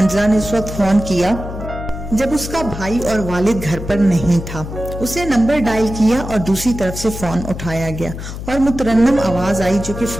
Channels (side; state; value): left; noise; hum, 9 dB below the sound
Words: ने उस वक्त फोन किया जब उसका भाई और वालिद घर पर नहीं था। उसे नंबर डायल किया और दूसरी तरफ से फोन उठाया गया और मुतरन्नम आवाज आई जो कि